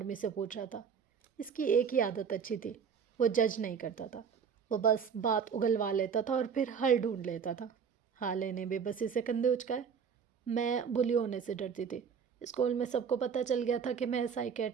سے پوچھ رہا تھا۔ اس کی ایک ہی عادت اچھی تھی، وہ جج نہیں کرتا تھا، وہ بس بات اگلوا لیتا تھا اور پھر حل ڈھونڈ لیتا تھا۔ حالے نے بے بسی سے کندھے اچکائے۔ میں بلی ہونے سے ڈرتی تھی۔ اسکول میں سب کو پتہ چل گیا تھا کہ میں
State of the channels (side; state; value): left; quieter; 6.8 dB